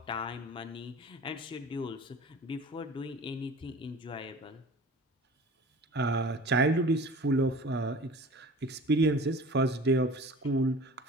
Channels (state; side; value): normal; both; correlation 0.41